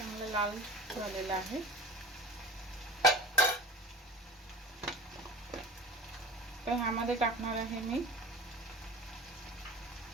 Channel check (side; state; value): both; normal; correlation 0.38